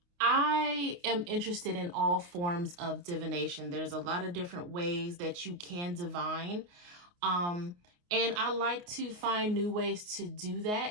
I am interested in all forms of divination. There's a lot of different ways that you can divine. And I like to find new ways to do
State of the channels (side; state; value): left; late; 29 ms